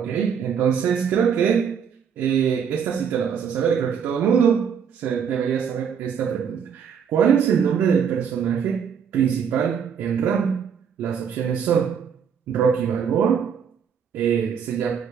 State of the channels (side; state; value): left; quieter; 7.3 dB